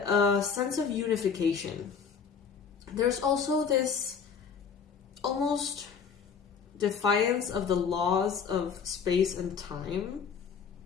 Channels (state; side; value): quieter; right; 6.3 dB